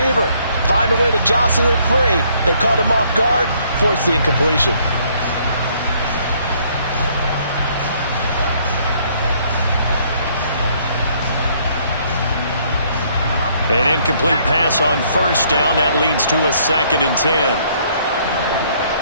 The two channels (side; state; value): both; inverted; correlation -0.65